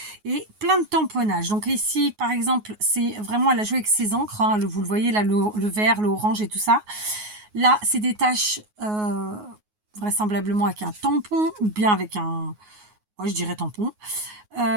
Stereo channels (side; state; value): left; late; 9.5 ms